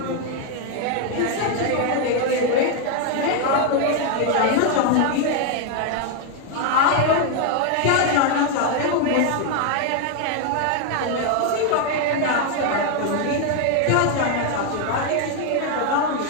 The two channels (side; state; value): both; different; correlation 0.01